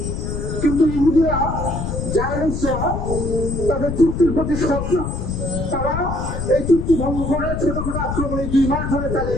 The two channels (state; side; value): noise; left; rumble, 3 dB below the sound